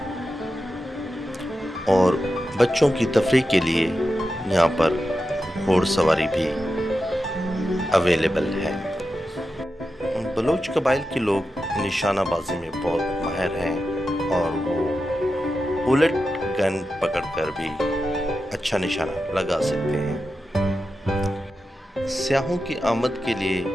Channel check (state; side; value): normal; both; correlation 0.90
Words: और बच्चों की तफरीह के लिए यहाँ पर घोड़सवारी भी अवेलेबल है। बलोच कबाइल के लोग निशानाबाजी में बहुत माहिर हैं और वो बुलेट गन पकड़कर भी अच्छा निशाना लगा सकते हैं। सियाहों की आमद के लिए